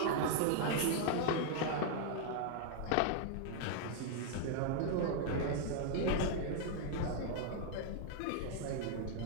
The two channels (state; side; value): different; both; correlation 0.00